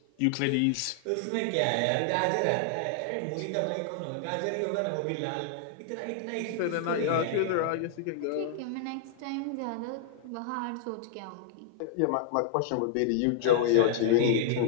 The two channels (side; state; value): both; different; correlation -0.01